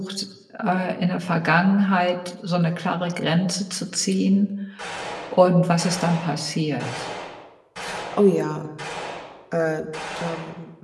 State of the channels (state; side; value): identical; both; correlation 1.00